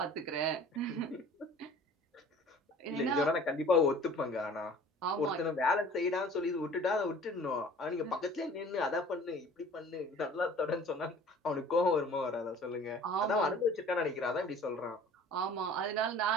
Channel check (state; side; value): normal; both; correlation 0.47